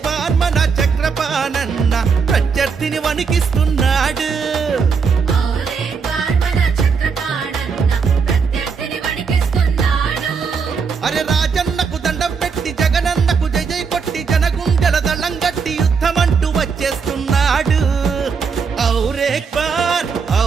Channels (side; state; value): left; quieter; 5.6 dB